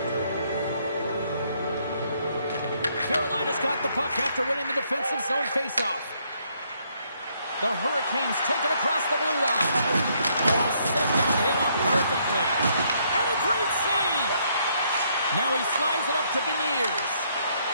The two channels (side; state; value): both; inverted; correlation -0.71